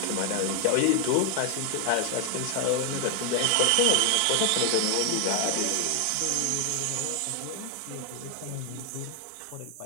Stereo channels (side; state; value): both; different; correlation 0.00